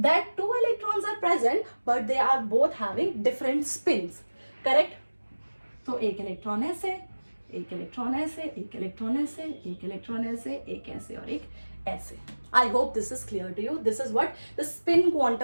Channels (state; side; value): inverted; both; correlation -1.00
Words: 2 electrons are present but they are both having different spins. Correct. तो एक इलेक्ट्रॉन ऐसे, एक इलेक्ट्रॉन ऐसे, एक इलेक्ट्रॉन ऐसे, एक इलेक्ट्रॉन ऐसे, एक ऐसे और एक ऐसे. I hope this is clear to you. This is what the spin